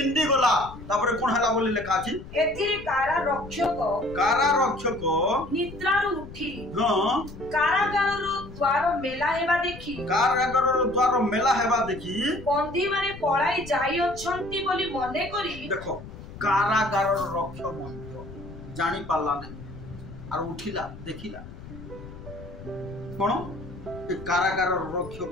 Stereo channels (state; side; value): noise; left; rumble, 14 dB below the sound